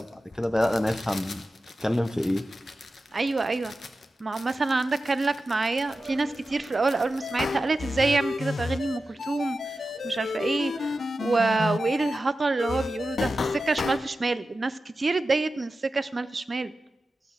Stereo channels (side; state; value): both; normal; correlation 0.93